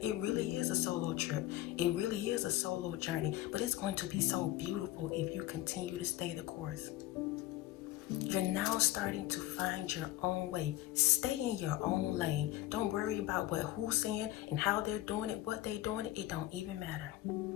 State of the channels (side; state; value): right; quieter; 15.4 dB